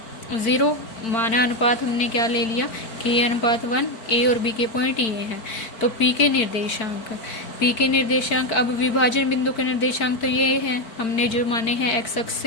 0। माना अनुपात हमने क्या ले लिया, k अनुपात 1। ए और बी के पॉइंट ये हैं। तो p के निर्देशांक, अब विभाजन बिंदु के निर्देशांक तो ये हैं, हमने जो माने हैं एक्स अक्ष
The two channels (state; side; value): late; right; 4.5 ms